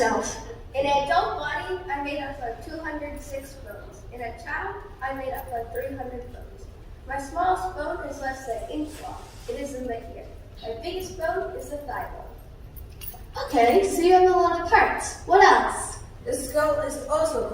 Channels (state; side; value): identical; both; correlation 1.00